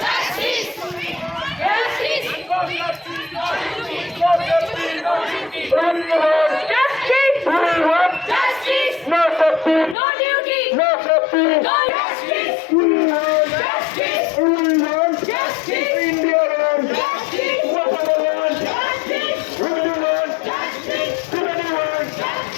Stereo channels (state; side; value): drops out; right; at 10.0 s